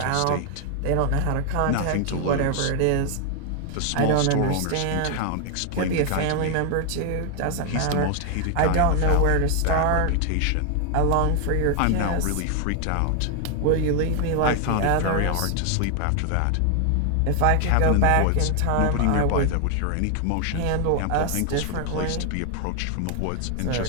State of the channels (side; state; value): both; different; correlation 0.00